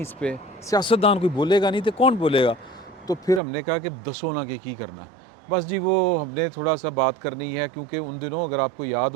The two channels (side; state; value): left; drops out; at 3.4 s